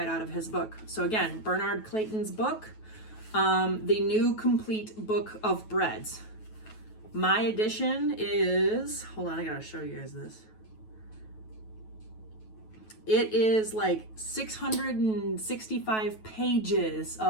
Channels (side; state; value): right; late; 9.2 ms